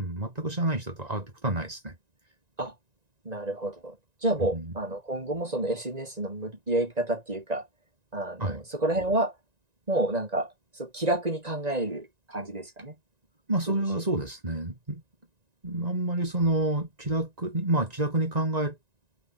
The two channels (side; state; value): left; late; 1.9 ms